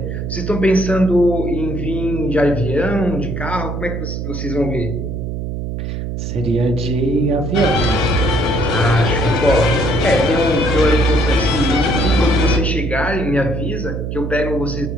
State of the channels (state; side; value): noise; right; hum, 5 dB below the sound